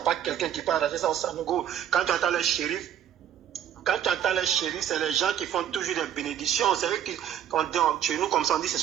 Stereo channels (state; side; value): quieter; left; 10.1 dB